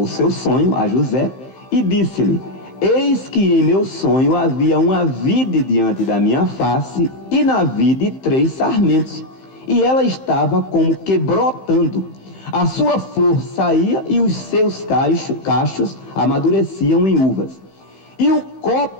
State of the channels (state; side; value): late; right; 15 ms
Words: seu sonho a José e disse-lhe: eis que em meu sonho havia uma vide diante da minha face, e na vide 3 sarmentos, e ela estava como que brotando. A sua flor saía e os seus cachos amadureciam em uvas. E o